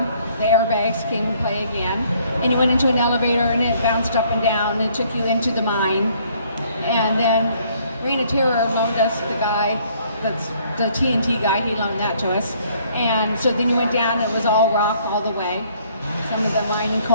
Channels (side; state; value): both; inverted; correlation -0.63